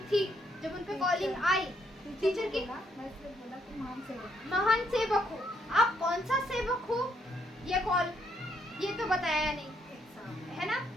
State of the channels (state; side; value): normal; both; correlation 0.73